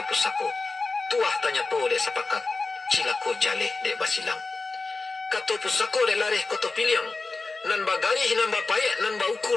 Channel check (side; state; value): right; quieter; 3.7 dB